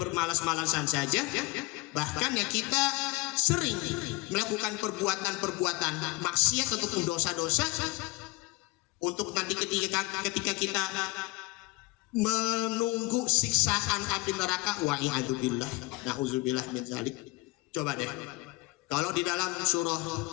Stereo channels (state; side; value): quieter; right; 22.6 dB